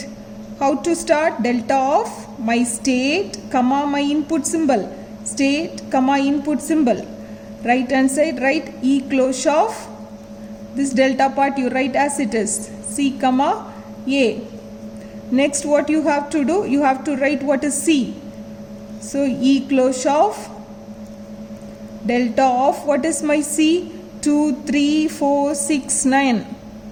How to start? Delta of my state, comma my input symbol. State, comma input symbol. Right hand side, write E close of this delta part you write as it is. C, comma A. Next what you have to do? You have to write what is C. So E close of delta of what is my C? 2, 3, 4, 6, 9.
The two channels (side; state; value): both; identical; correlation 1.00